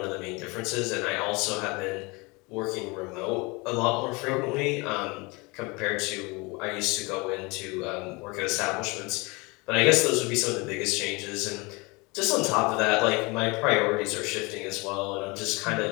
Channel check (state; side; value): quieter; right; 26.7 dB